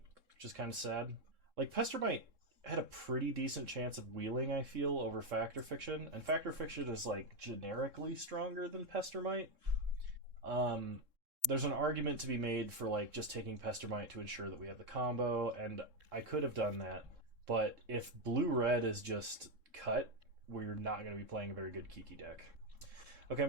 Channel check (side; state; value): left; late; 3.7 ms